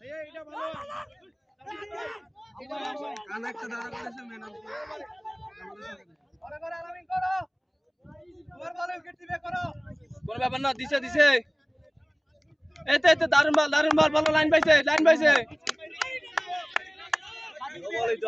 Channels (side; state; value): both; identical; correlation 1.00